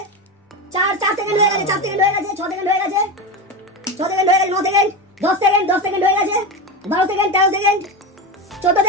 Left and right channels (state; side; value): normal; both; correlation 0.19